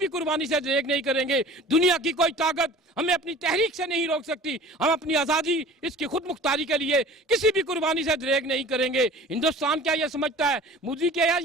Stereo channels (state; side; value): normal; both; correlation 0.43